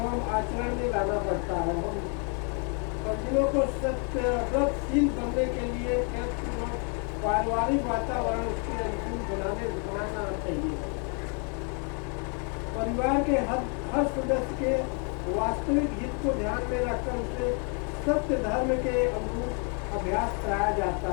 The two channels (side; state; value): right; quieter; 37.9 dB